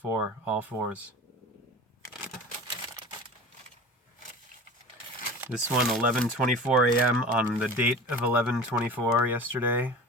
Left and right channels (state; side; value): normal; both; correlation 0.35